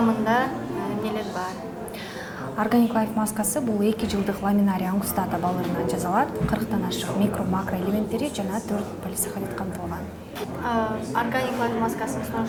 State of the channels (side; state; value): both; identical; correlation 1.00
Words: эмнелер бар? Organic Life маскасы бул 2 жылдык ламинарий ангустата балырынан жасалат, 40тан ашык микро-макро элементтери жана 4 полисахарид камтылган. Organic Life маскасын